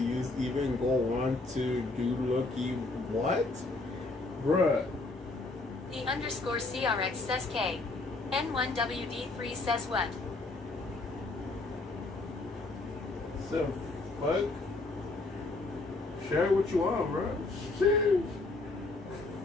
even go on to do looky what? Bruh. The underscore CRX says K. N1WD3 says what? So, fuck? Share what you want, bruh. Shit.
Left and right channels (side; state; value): right; quieter; 3.3 dB